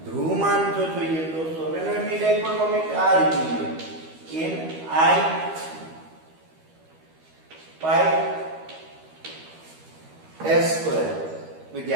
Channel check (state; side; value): late; left; 12 ms